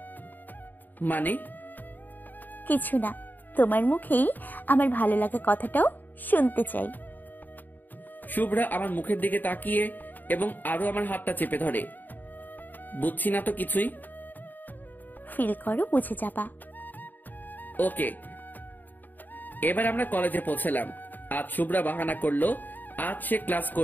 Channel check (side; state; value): right; late; 0.088 ms